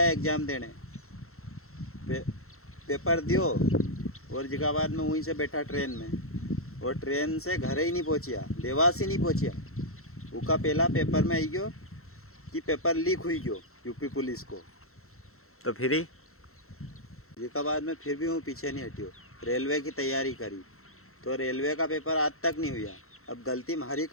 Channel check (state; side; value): late; right; 0.63 ms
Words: एग्ज़ाम देने पेपर दियो और जगह बाद में वहीं से बैठा ट्रेन में और ट्रेन से घर ही नहीं पहुँचिया देवास ही नहीं पहुँचिया उसका पहला पेपर में आई गयो कि पेपर लीक हुई गयो यूपी पुलिस को तो फिर ही जगह बाद में फिर भी हूँ पीछे नहीं हटियो रेलवे की तैयारी करी तो रेलवे का पेपर आज तक नहीं हुआ। अब गलती हमारी